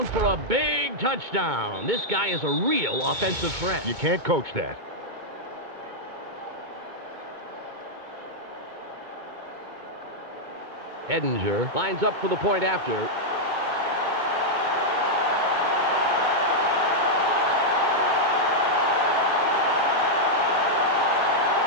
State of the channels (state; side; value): late; left; 2.2 ms